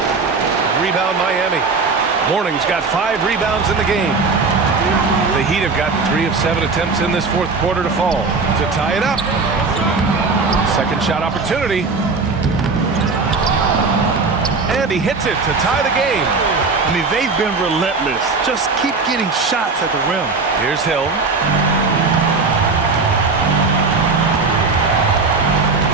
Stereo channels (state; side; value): quieter; left; 4.2 dB